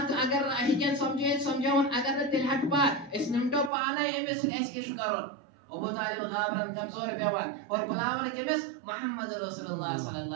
अगर हिकन समझावन अगर तिलहट पात इस निमटो पाने एमस ऐसे शुकरन अबू तालिब गाबरन कमजोर पेवन और बुलावन केमिस मोहम्मद रसूलुल्लाह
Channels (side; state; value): left; drops out; at 3.7 s